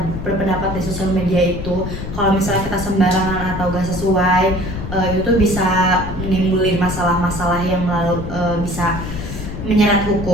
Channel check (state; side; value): noise; left; rumble, 7 dB below the sound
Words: berpendapat di sosial media itu, kalau misalnya kita sembarangan atau gak sesuai, itu tuh bisa menimbulin masalah-masalah yang bisa menyeret